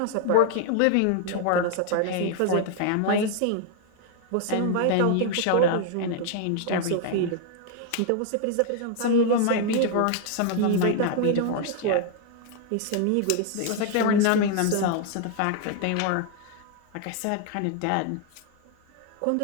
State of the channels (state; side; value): different; both; correlation 0.00